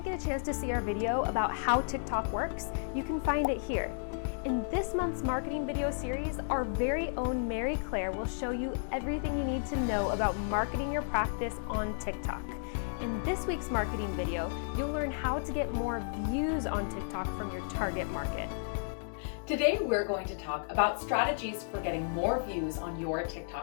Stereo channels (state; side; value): silent; right; digital silence